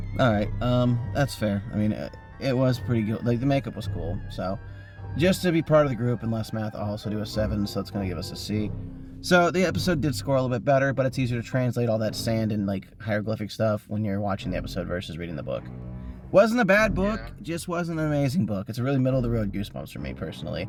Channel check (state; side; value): identical; both; correlation 1.00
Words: All right, that's fair. I mean, it was pretty good. The makeup was cool. So just to be part of the group and less math, I'll also do a 7. So it's gonna give us a C. So the episode did score a little bit better, but it's easier to translate all that sand and hieroglyphic stuff when you're watching the episode versus reading the book. Wasn't a bad book, just wasn't an amazing book. It's a really middle of the road Goosebumps for me personally.